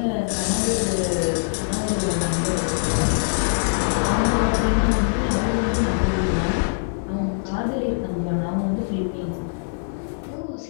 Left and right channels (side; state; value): right; silent; digital silence